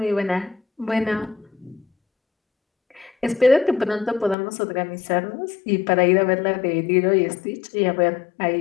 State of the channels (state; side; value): drops out; right; at 4.4 s